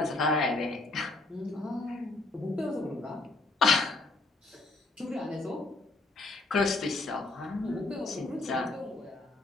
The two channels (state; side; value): quieter; right; 3.1 dB